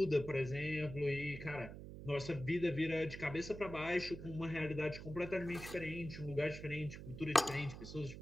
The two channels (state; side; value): noise; right; hum, 11 dB below the sound